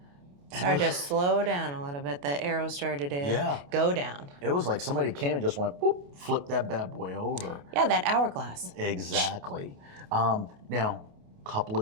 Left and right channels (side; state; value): left; late; 28 ms